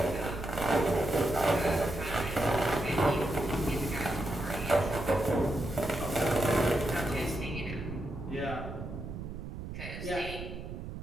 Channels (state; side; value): noise; right; rumble, 8 dB below the sound